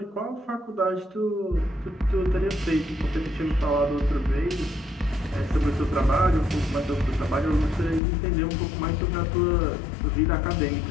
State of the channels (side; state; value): right; drops out; at 8.0 s